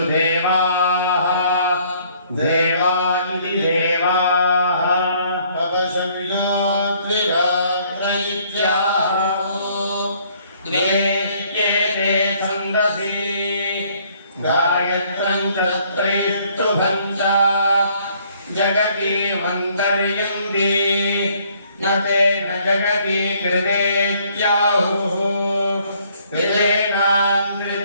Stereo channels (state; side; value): inverted; both; correlation -0.63